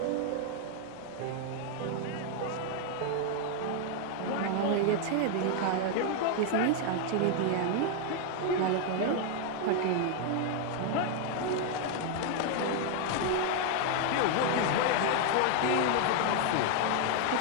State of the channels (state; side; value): different; both; correlation 0.00